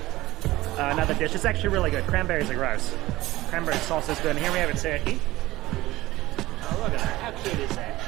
dish. It's actually really good. Cranberries are gross. Cranberry sauce is good. And here we have a turkey. cute is that?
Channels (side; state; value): left; quieter; 17.7 dB